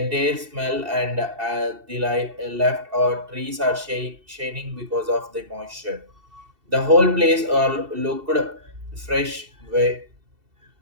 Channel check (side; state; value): left; late; 2.7 ms